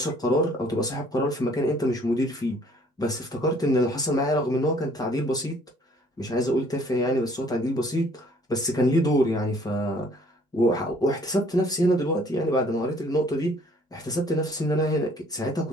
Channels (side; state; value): both; normal; correlation 0.59